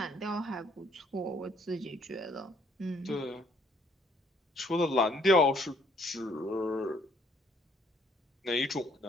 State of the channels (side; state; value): both; normal; correlation 0.65